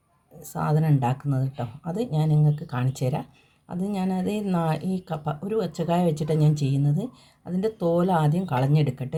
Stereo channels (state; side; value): identical; both; correlation 1.00